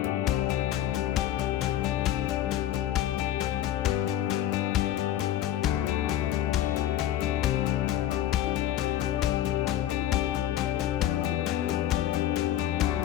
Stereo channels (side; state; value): right; quieter; 12.2 dB